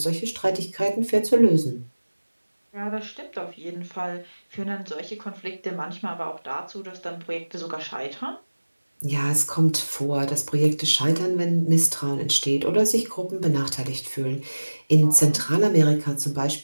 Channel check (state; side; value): inverted; both; correlation -1.00